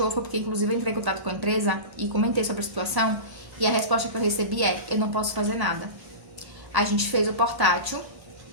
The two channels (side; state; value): left; late; 1.1 ms